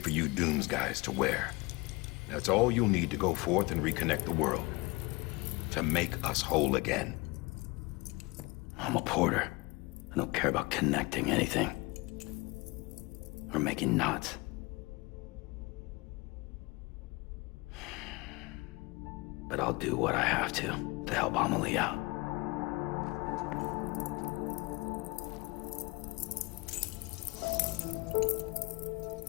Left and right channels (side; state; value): right; quieter; 24.7 dB